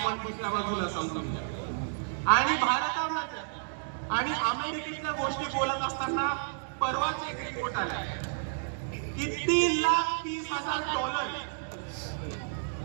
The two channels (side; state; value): left; silent; digital silence